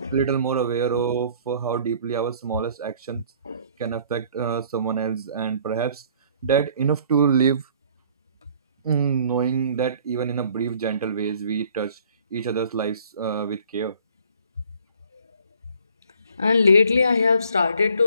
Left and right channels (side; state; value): both; inverted; correlation -0.57